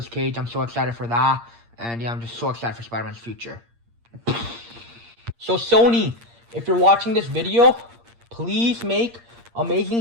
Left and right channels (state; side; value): late; left; 8.6 ms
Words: Cage, I'm so excited for that. And yeah, I'm just so excited for Spider-Man's future. So Sony, if you're watching this video, please make